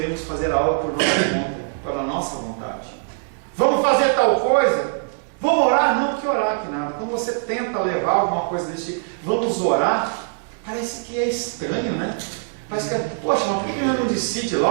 fazer algo por nossa conta, pela nossa vontade. Vamos fazer tal coisa? Vamos orar? Não, que orar que nada. Quando você tenta levar alguma coisa desse tipo, vamos orar, parece que é estranho, né? Parece que é, poxa, mas por que não decide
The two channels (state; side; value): silent; left; digital silence